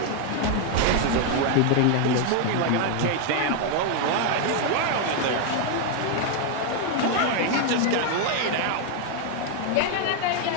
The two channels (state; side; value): different; both; correlation 0.00